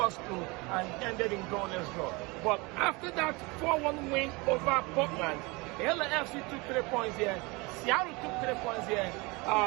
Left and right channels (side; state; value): left; quieter; 25.9 dB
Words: Crew and ended in goalless draw. But after that 4-1 win over Portland, the LAFC took 3 points here. Seattle took 3 points here.